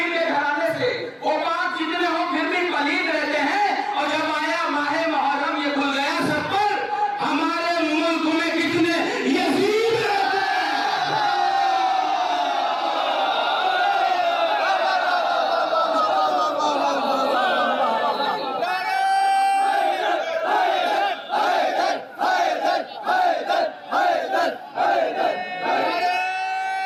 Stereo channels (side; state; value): both; identical; correlation 1.00